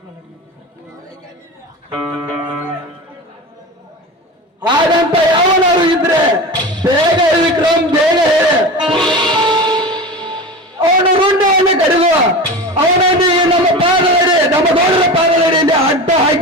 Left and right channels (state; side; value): normal; both; correlation 0.29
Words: ಹಾಗಂತ ಯಾವನಾರು ಇದ್ರೆ ಬೇಗ ವಿಕ್ರಮ್ ಬೇಗ ಹೇಳಿ ಅವನು ರುಂಡವನ್ನು ಕಡಿದು ಅವನನ್ನು ನಮ್ಮ ಪಾದದಡಿ ನಮ್ಮ ಗೌಡರ ಪಾದದಡಿಯಲ್ಲಿ ಅಡ್ಡ